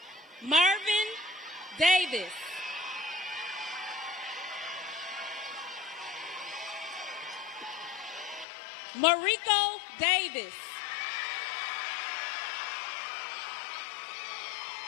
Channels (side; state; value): right; drops out; at 8.5 s